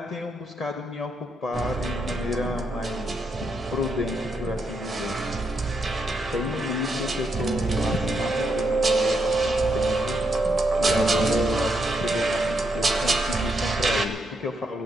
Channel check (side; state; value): both; normal; correlation 0.80